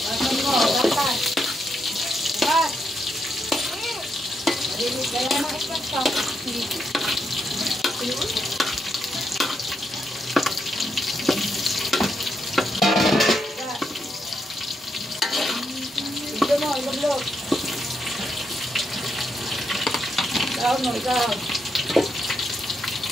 Basan mo, basan. Bas. Marinig ka yan. Mga stand pa. Ito mo, ilog-log. Ikaw mo, ikaw.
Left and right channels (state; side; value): normal; both; correlation 0.80